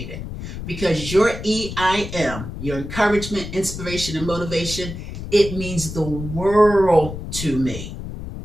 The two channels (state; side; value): noise; left; rumble, 8 dB below the sound